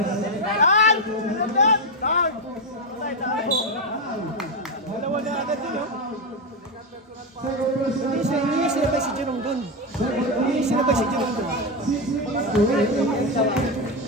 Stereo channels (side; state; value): both; normal; correlation 0.09